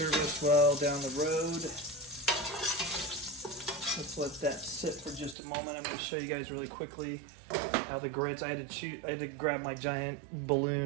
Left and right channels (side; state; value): left; drops out; at 5.4 s